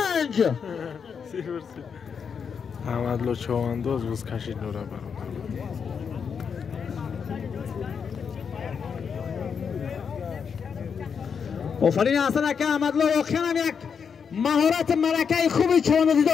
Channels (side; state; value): right; quieter; 6.5 dB